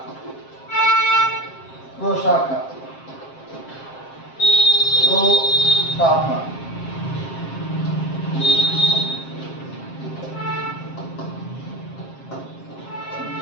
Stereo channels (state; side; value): late; right; 7.5 ms